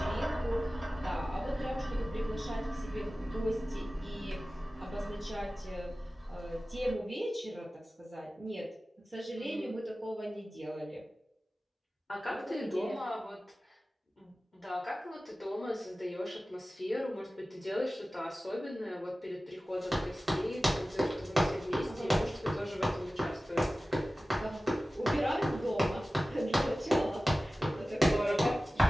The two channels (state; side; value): normal; both; correlation 0.96